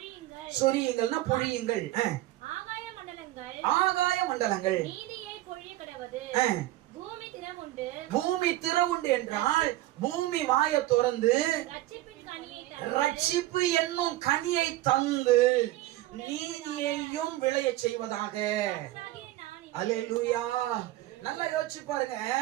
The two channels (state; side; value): quieter; left; 16.2 dB